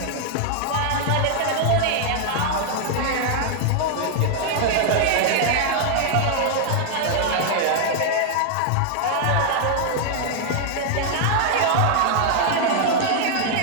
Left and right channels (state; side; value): different; both; correlation 0.00